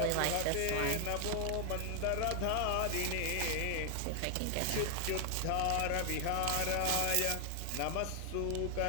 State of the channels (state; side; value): different; both; correlation 0.00